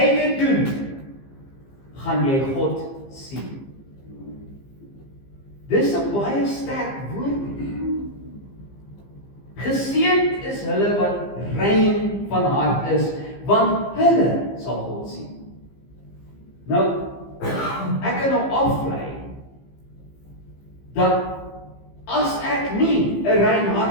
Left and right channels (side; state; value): right; late; 15 ms